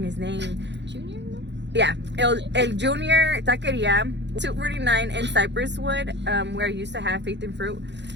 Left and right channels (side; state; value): left; late; 0.52 ms